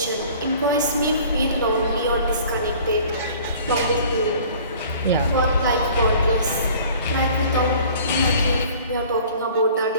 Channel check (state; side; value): inverted; both; correlation -0.49